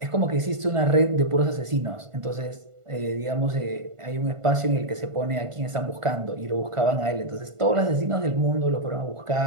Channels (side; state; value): left; late; 1.5 ms